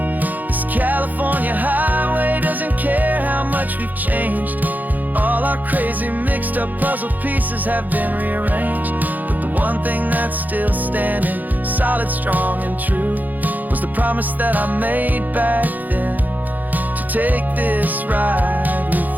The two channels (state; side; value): late; left; 0.083 ms